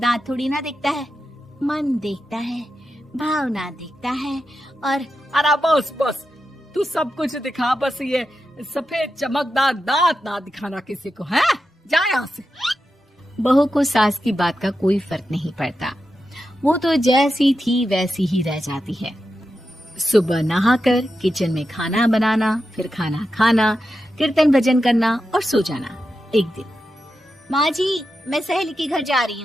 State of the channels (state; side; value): normal; both; correlation 0.89